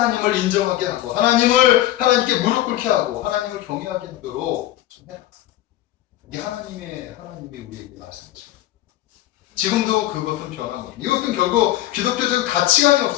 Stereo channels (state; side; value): quieter; right; 14.4 dB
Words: 인정하게 하고 하나님께 무릎 꿇게 하고 하나님을 경외하게 하도록 좀 해라. 이게 하나님이 우리에게 말씀하십니다. 지금도 그것은 변함없습니다. 이것은 결국 기독교적 가치관이